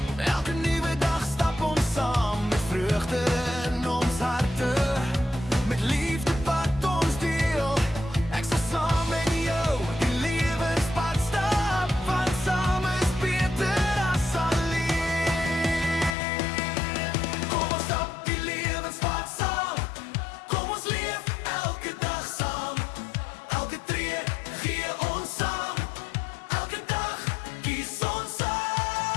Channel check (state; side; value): drops out; right; at 16.2 s